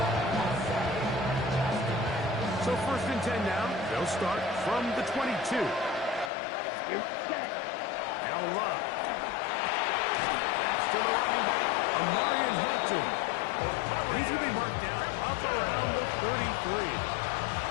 So first and 10 now. They'll start from the 22. Now Love. That's to the running back, Amarian Hampton. He's going to be marked down up around the 33.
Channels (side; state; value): right; drops out; at 6.3 s